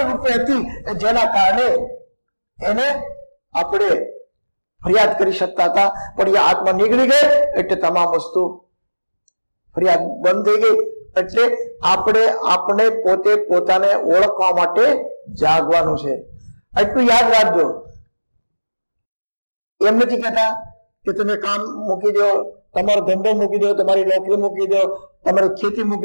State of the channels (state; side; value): inverted; both; correlation -1.00